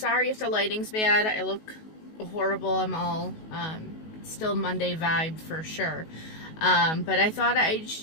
if the lighting's bad. I look horrible. I'm all still Monday vibe for sure. But I thought I'd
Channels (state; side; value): late; right; 19 ms